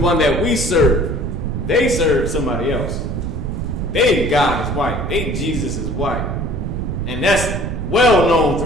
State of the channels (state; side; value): noise; right; rumble, 3 dB below the sound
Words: that we serve. They serve somebody else. They God is white. They Jesus is white. And that's well known